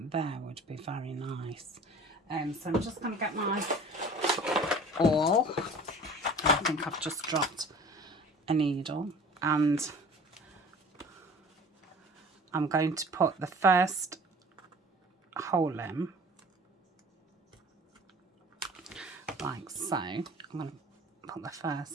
there would be very nice. So I'm just going to get my awl. I think I've just dropped a needle, and I'm going to put the first hole in, like so. I'm going to put the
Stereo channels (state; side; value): normal; both; correlation 0.45